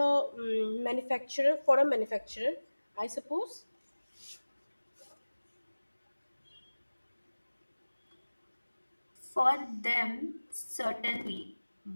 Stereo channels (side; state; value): both; inverted; correlation -1.00